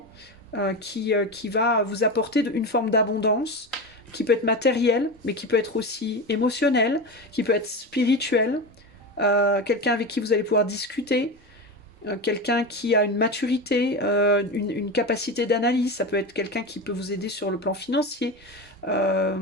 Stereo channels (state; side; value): normal; both; correlation 0.22